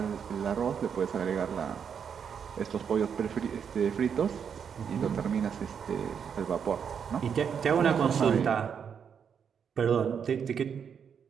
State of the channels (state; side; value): quieter; left; 7.3 dB